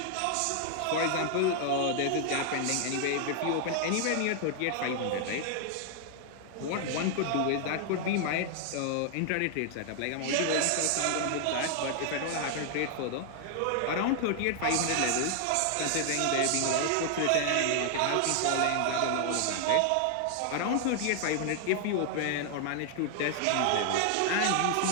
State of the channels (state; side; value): different; both; correlation 0.00